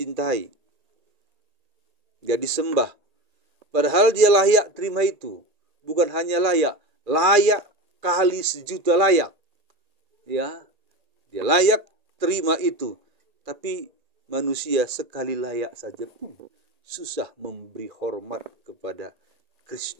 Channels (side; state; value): left; late; 1.8 ms